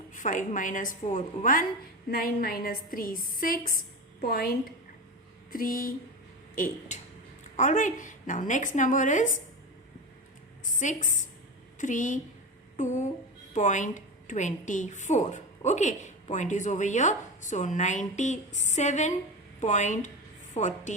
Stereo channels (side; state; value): both; normal; correlation 0.23